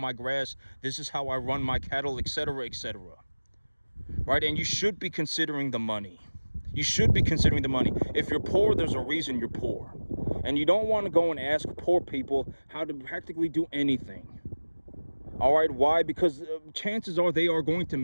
grass. This is how I run my cattle, etc., etc. Right? And you should be considering the money. You should be considering the money. If you're poor, there's a reason you're poor. And you don't want to go and ask poor people how to practically do anything. All right, why? Because chances are they are going to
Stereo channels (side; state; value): both; inverted; correlation -1.00